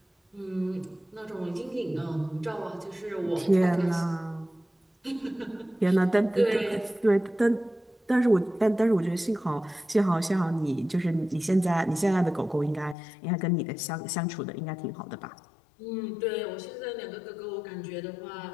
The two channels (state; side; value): drops out; right; at 13.0 s